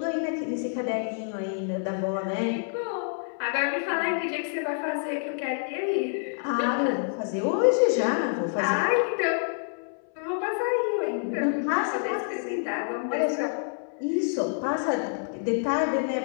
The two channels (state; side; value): silent; right; 60 dB below the other